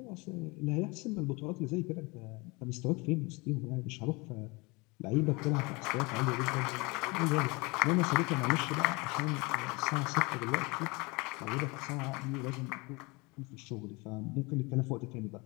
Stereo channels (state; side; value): quieter; right; 26.5 dB